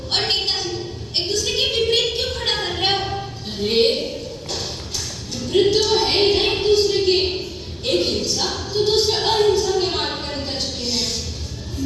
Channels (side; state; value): both; identical; correlation 1.00